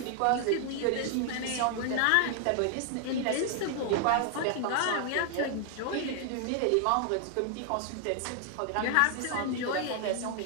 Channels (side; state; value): both; different; correlation 0.00